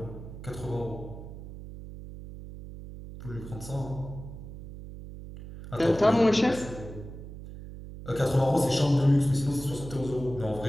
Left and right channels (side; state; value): right; noise; hum, 12 dB below the sound